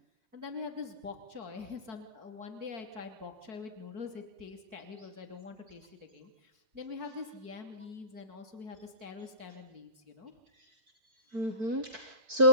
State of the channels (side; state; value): left; late; 4.5 ms